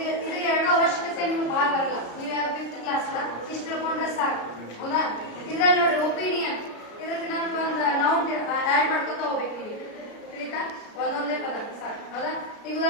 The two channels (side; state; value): right; late; 33 ms